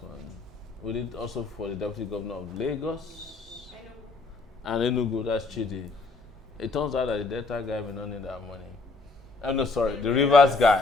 We did also for the deputy governor of Lagos and Enugu. That's Chidi. It turns out that the Delta guy may not need that money. Oh no, sorry, the Rivers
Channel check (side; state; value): right; quieter; 3.8 dB